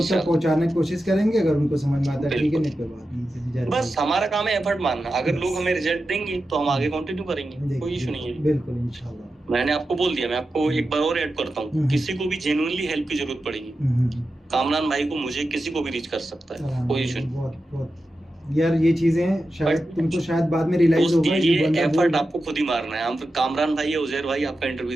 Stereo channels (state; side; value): normal; both; correlation 0.91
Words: तक पहुंचाने की कोशिश करेंगे, अगर उनको समझ में आता है ठीक है, नहीं कोई बात नहीं, बस हमारा काम है एफर्ट मारना, अगर लोग हमें रिजल्ट देंगे तो हम आगे कंटिन्यू करेंगे, कोई इशू नहीं है, बिल्कुल इंशाल्लाह। मैंने आपको बोल दिया, मैं आपको एक बार और ऐड करता हूँ, किसी को भी जेन्युइनली हेल्प की जरूरत पड़ेगी, कामरान भाई को, मुझे, किसी को भी रीच कर सकता है, कोई इशू नहीं। बहुत यार ये चीजें शायद तुमको शायद बाद में रियलाइज होगा, ये एफर्ट आपको खुद ही मारना है, हम कामरान भाई या उजैर भाई आपका